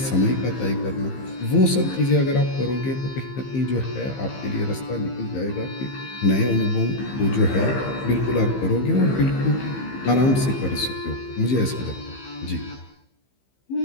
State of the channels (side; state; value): right; late; 15 ms